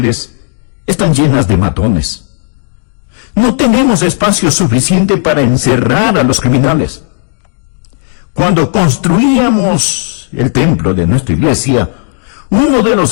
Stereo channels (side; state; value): right; silent; 62 dB below the other